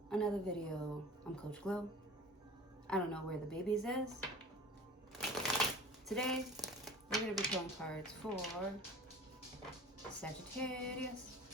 another video. I'm Coach Glow. I don't know where the babies is. Today, we're going to be pulling cards for Sagittarius.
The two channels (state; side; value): normal; both; correlation 0.41